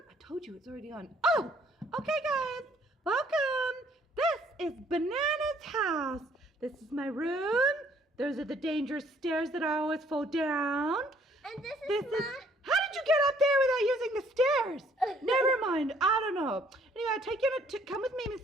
told you it's already on. Oh, okay, guys. Welcome. This is Banana's house. This is my room. Those are the dangerous stairs that I always fall down. And this is How did you get up there without using the stairs? Never mind. I don't know. Anyway, I'll take you to come with me,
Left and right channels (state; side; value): normal; both; correlation 0.62